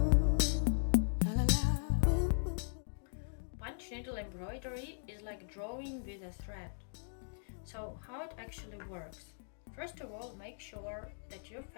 Punch needle embroidery is like drawing with a thread. So how it actually works? First of all, make sure that your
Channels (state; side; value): silent; right; digital silence